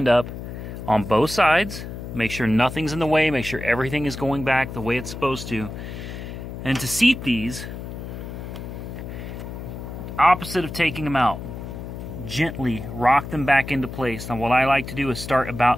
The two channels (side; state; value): left; noise; hum, 9 dB below the sound